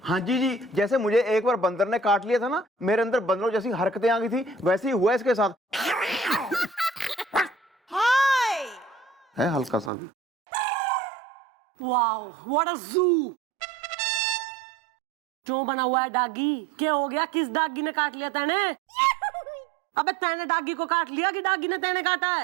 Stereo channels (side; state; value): left; drops out; at 9.9 s